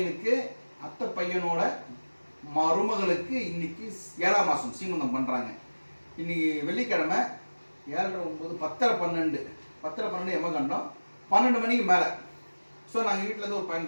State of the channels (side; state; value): both; inverted; correlation -1.00